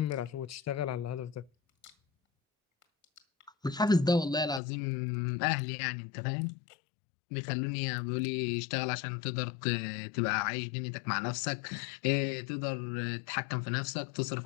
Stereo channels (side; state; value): right; drops out; at 4.6 s